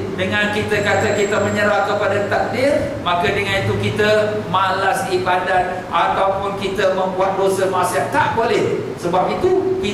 dengan kita kata kita menyerah kepada takdir, maka dengan itu kita malas ibadat ataupun kita membuat dosa maksiat. Tak boleh. Sebab itu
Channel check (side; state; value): both; identical; correlation 1.00